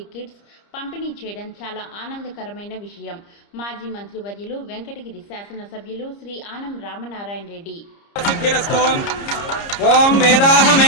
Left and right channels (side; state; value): right; late; 30 ms